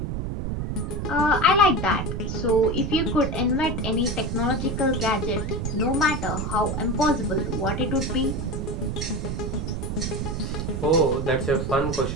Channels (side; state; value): right; noise; rumble, 3 dB below the sound